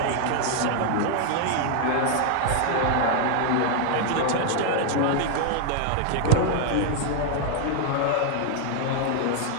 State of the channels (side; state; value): both; different; correlation 0.00